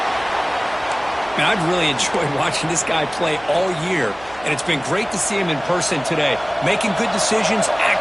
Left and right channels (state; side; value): noise; right; hum, 21 dB below the sound